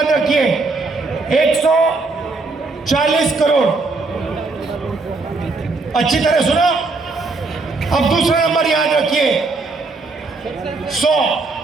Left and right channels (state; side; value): quieter; left; 3.7 dB